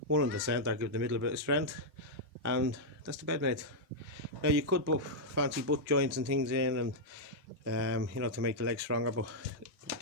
one in the centre, give the middle a bit of strength, and that's the bed made. Now you could put fancy butt joints and things in, and you know, to make the legs stronger, but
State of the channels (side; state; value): both; normal; correlation -0.05